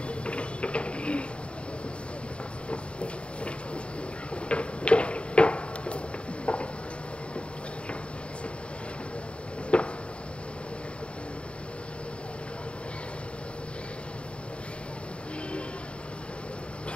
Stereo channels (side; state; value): right; late; 0.058 ms